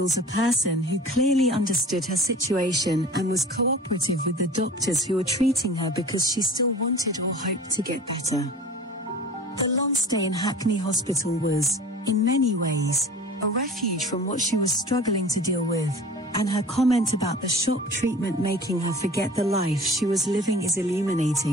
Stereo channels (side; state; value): both; normal; correlation 0.41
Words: a person who clearly understood her situation and was cooperative with the doctors who were treating her because she still wanted or hoped to get better. The long stay in Hackney Hospital was, in many ways, a refuge from what she was struggling to deal with, and her comment about the shock treatment making her forget the life she was living is